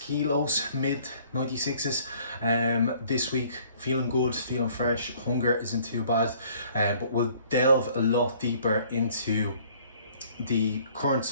mid 96s this week. Feeling good, feeling fresh, hunger isn't too bad, but we'll delve a lot deeper into the current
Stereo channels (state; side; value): inverted; both; correlation -0.58